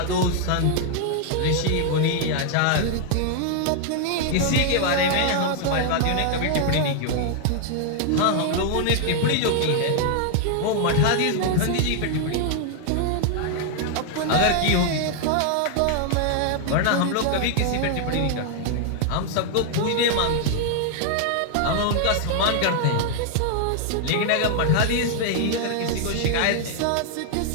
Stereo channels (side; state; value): both; different; correlation 0.00